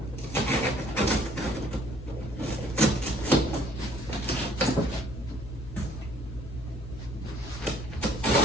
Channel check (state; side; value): noise; left; hum, 11 dB below the sound